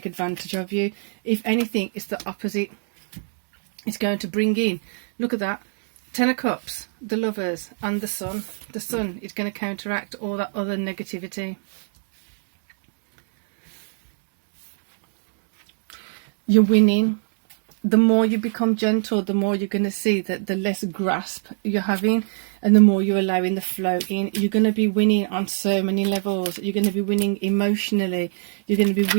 advantage of you. If anything, it's the opposite. It's going to bring in, look at that, 10 of Cups, the Lovers, and the Sun. The Sun is going to counteract all that other negativity. You're winning. The more you become gentle, the more you're going to see that the less grasp you're having, and the more you're allowing the flow in. You're going to be winning on so many levels. You're going to be winning emotionally. You're going to be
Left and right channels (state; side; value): silent; left; 63 dB below the other